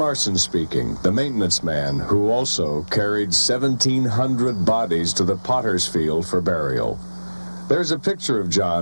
speaking, the maintenance man who also carried 1,700 bodies to the potter's field for burial. There's a picture of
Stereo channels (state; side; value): inverted; both; correlation -1.00